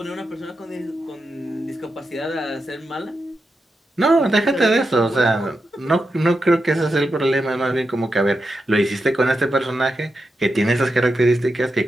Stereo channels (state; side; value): normal; both; correlation 0.88